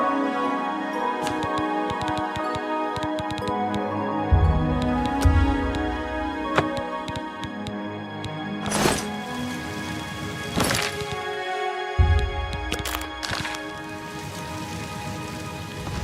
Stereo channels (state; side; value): identical; both; correlation 1.00